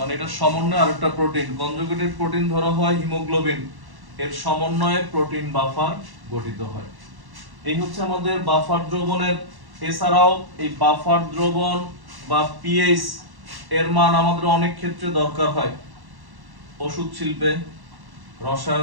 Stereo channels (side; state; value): left; late; 1.1 ms